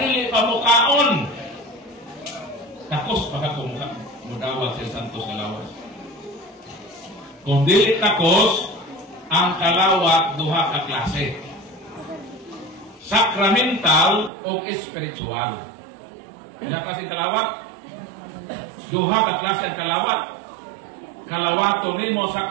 pamukaon. Takos baka kumuka mudawat sa santos nga lawas. Kung dili takos, ang kalawat duha ka klase. Sacramental o spiritual. Ilang klase kalawat? Duha ka klase ang kalawat. Kalawato nimo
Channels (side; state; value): left; drops out; at 14.3 s